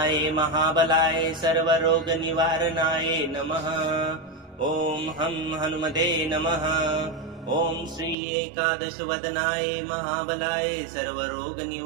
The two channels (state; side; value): drops out; left; at 8.2 s